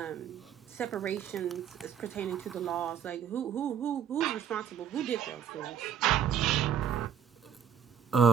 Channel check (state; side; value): quieter; left; 8.4 dB